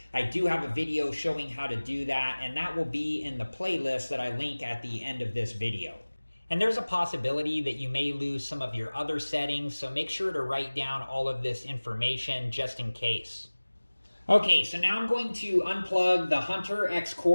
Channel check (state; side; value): inverted; both; correlation -1.00